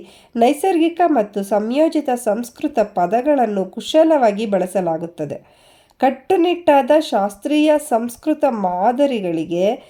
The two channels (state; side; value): identical; both; correlation 1.00